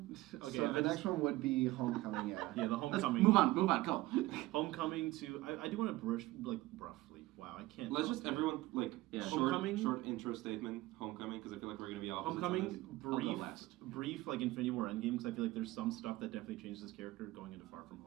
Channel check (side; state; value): left; quieter; 18.5 dB